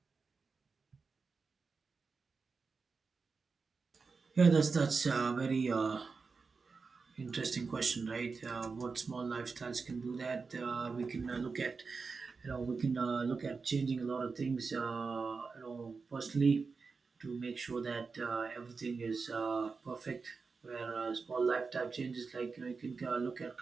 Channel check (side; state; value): left; quieter; 4.7 dB